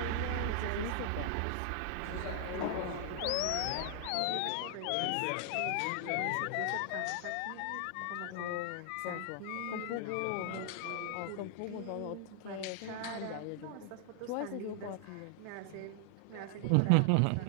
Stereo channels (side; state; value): both; different; correlation 0.00